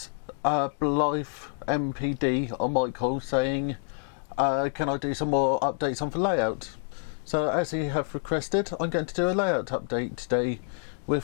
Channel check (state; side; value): silent; right; digital silence